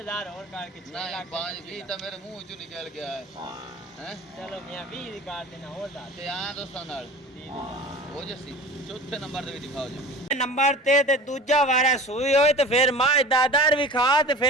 ਹੋਰ ਕਰਕੇ 6 ਨਹੀਂ ਲੱਖ 5 20 ਤਾਂ ਮੇਰੇ ਮੂੰਹ ਚੋਂ ਨਿਕਲ ਗਿਆ ਹੈ ਚਲੋ ਮੀਆਂ 20 ਦੀ ਕਾਰ ਦੇਣਾ ਹੋਰ ਦੱਸ ਤੇ ਆ ਦੋਸਤਾਂ ਨਾਲ 30,000 ਹੋ ਜੱਸੀ ਚੌਥੇ ਨੰਬਰ ਤੇ ਵੀ ਦਿਖਾਓ ਜੀ ਨੰਬਰ ਤੇ ਦੂਜਾ ਵਾਰਾ ਸੂਈ ਹੋਏ ਤੇ ਫਿਰ ਮਾਂ ਦਾਦਰ ਵੀ ਖਾ ਤੇ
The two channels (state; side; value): normal; both; correlation 0.38